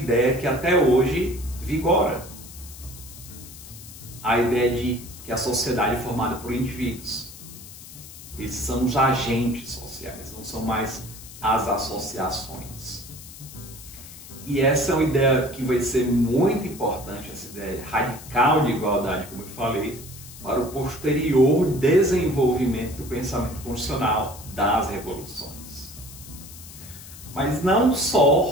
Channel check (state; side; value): noise; left; hiss, 16 dB below the sound